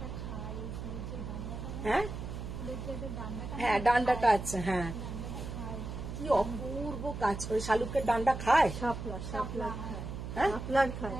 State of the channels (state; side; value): noise; right; hum, 7 dB below the sound